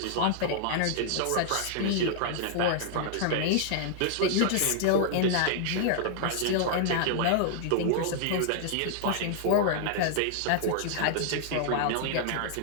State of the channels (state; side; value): different; both; correlation -0.01